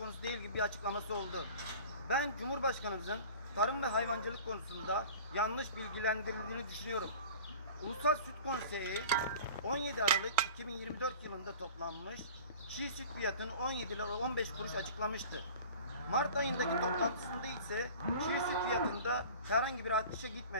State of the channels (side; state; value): both; inverted; correlation -0.40